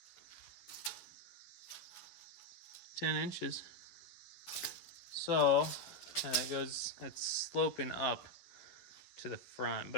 10 inches. So, and it goes, it's sloping up to the front,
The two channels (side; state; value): right; late; 11 ms